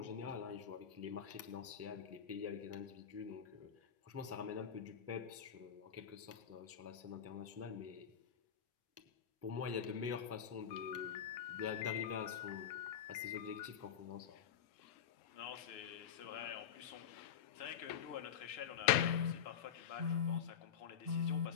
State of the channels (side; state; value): right; quieter; 8.4 dB